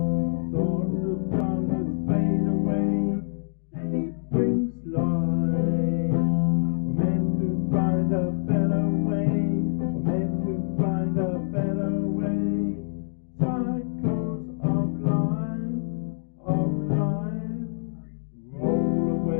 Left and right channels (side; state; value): right; silent; digital silence